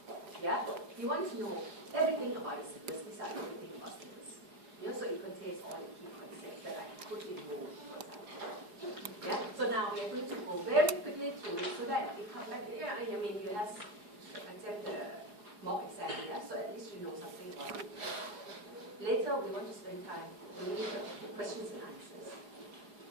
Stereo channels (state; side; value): late; left; 4.8 ms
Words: yeah, you want to know everything about the syllabus, these are everything about syllabus. Yeah, so it contains all the key concepts that I put in bold, for example. Yeah, so now we are going to go very quickly through it so that you come back, yeah, I mean, you have attempt the mock exam, yeah, so at least you know something about it. Later, we want to spend time doing the questions and answers.